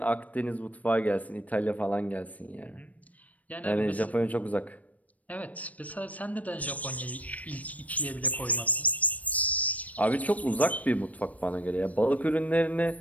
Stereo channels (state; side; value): late; right; 0.070 ms